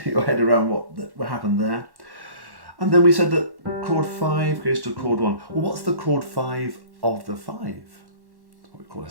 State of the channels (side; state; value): left; late; 1.1 ms